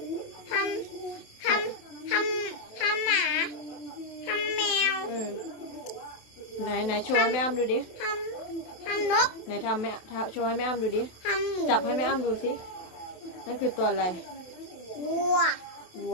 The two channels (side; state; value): right; late; 27 ms